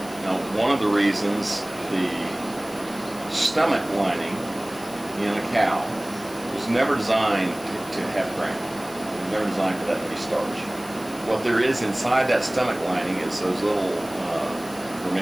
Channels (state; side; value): noise; left; hiss, 19 dB below the sound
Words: Now, one of the reasons the stomach lining in a cow was never designed to have grain. It was never designed for that heavy starch. What there is inside that stomach lining is those little